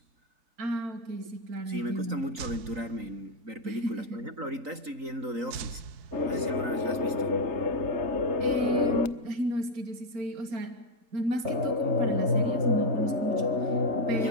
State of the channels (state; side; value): late; left; 3.9 ms